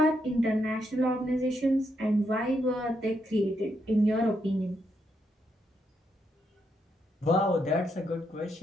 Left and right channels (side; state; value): both; normal; correlation 0.79